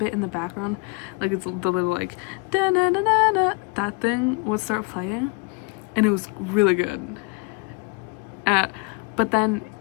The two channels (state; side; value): quieter; right; 27.5 dB